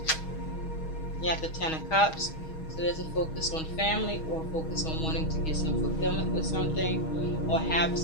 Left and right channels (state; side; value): late; right; 6.3 ms